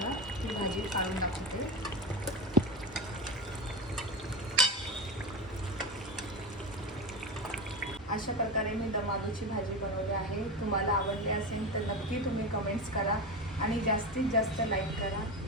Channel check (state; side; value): normal; both; correlation 0.20